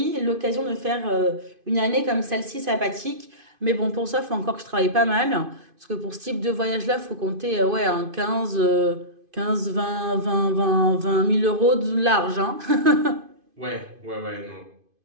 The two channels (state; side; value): late; left; 2.5 ms